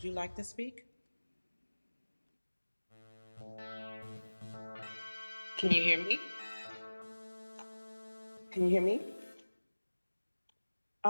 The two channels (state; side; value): inverted; both; correlation -1.00